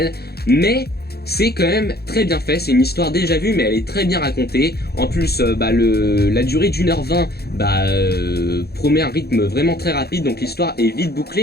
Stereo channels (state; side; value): late; right; 0.46 ms